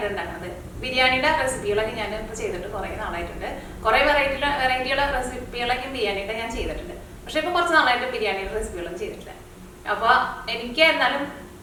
ഉണ്ടാക്കുന്നത്. ബിരിയാണിയുടെ റെസിപ്പികളൊക്കെ ഞാൻ ഇപ്പോൾ ചെയ്തിട്ട് കുറേ നാളായിട്ടുണ്ട്. കുറേ വെറൈറ്റിയുള്ള റെസിപ്പികളൊക്കെ ബിരിയാണിയുടെ ഞാൻ ചെയ്തിട്ടുണ്ട്. പക്ഷെ ഇപ്പോൾ കുറച്ച് നാളായിട്ട് ബിരിയാണിയുടെ റെസിപ്പികളൊന്നും ചെയ്തിട്ടില്ല. അപ്പോൾ എനിക്ക് എന്നാലും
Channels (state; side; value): identical; both; correlation 1.00